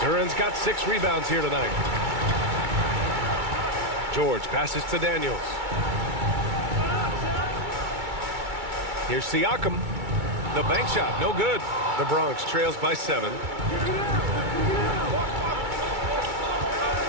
Duren's got 6 rebounds here tonight. George passes to Daniels. Here's Siakam. The bank shot, no good. The Bronx trails by 7.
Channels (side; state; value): left; late; 2.3 ms